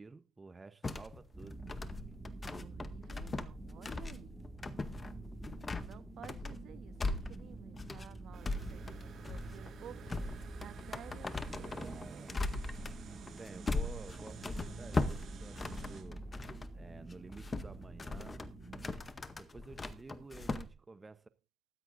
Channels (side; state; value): both; normal; correlation 0.85